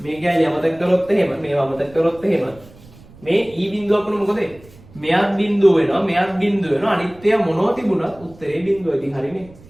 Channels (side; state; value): right; noise; rumble, 23 dB below the sound